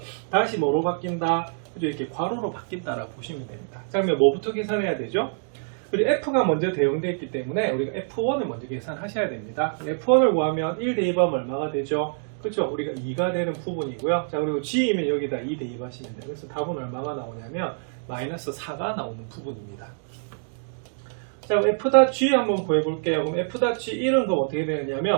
다시 뭐로 바뀐다? 그죠? 이렇게 괄호로 바뀐다라고 보시면 됩니다. 자, 그러면 뭐부터 계산해야 되죠? 그리고 F가 먼저 대응되어 있기 때문에 우리가 F1을 먼저 계산하셔야 됩니다. F1을 구하면 1 대입하면 얼마가 되죠? 그렇죠? 우리가 2가 되는 부분이고요. 자, 그리고 G이면 여기다 2 대입하시면 돼요. 그래서 답은 얼마가 나오냐면 마이너스 4가 나오는 부분입니다. 자, 그럼 F.G 한번 구해볼게요. 그럼 F.G 1은 그럼 어떻게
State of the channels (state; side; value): silent; left; digital silence